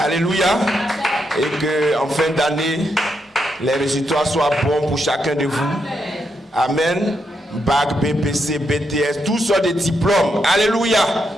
Et que en fin d'année, les résultats soient bons pour chacun de vous. Amen. Bac, BPC, BTS, tous sortes de diplômes. Alléluia.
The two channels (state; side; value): normal; both; correlation 0.81